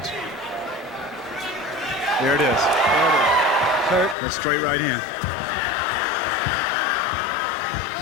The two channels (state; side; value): drops out; right; at 4.2 s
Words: There it is. Hurt. That straight right hand.